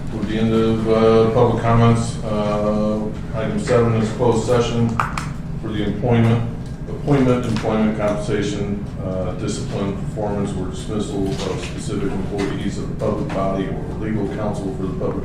With the end of public comments, item 7 is closed session for the appointment, employment compensation, discipline, performance, or dismissal of specific employees of the public body or legal counsel for the public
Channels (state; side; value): identical; both; correlation 1.00